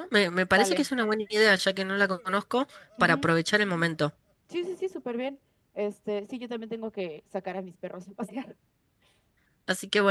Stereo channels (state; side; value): identical; both; correlation 1.00